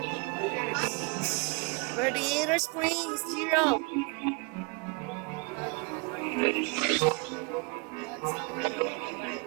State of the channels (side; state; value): left; quieter; 31.3 dB